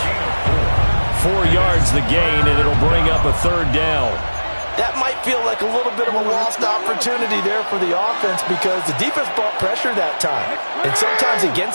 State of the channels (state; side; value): inverted; both; correlation -1.00